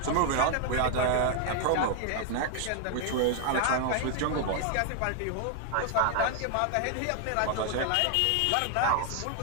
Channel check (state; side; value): different; both; correlation 0.00